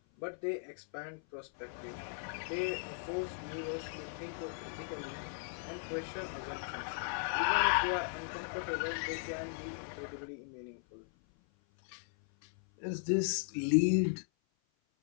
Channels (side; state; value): right; silent; 53 dB below the other